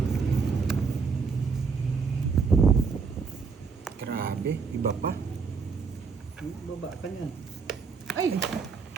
Grabe, iba pa. Baba ka niyan. Ay,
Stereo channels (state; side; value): quieter; left; 5.3 dB